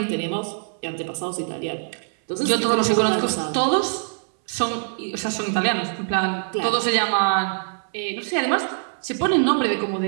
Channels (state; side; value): silent; left; 63 dB below the other